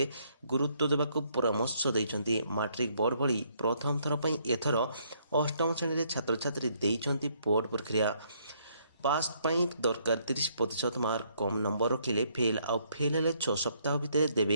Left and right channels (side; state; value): both; inverted; correlation -0.69